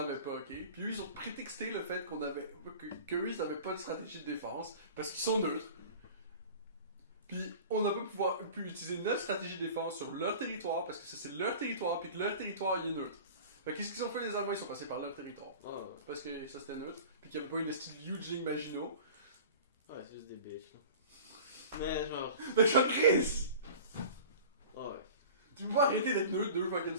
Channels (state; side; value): inverted; both; correlation -0.39